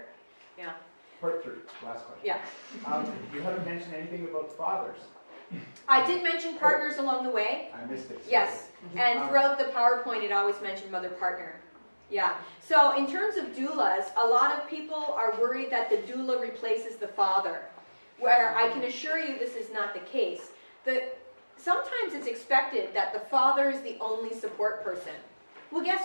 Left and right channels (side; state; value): both; inverted; correlation -1.00